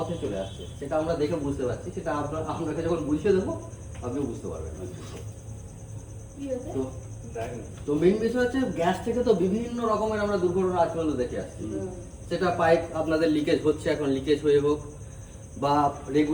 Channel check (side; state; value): both; identical; correlation 1.00